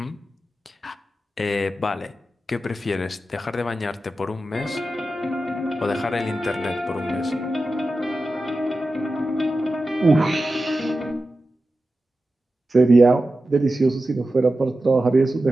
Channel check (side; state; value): both; normal; correlation 0.93